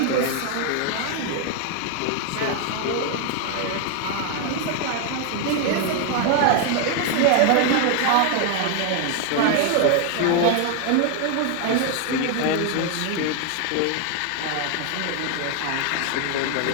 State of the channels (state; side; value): different; both; correlation 0.00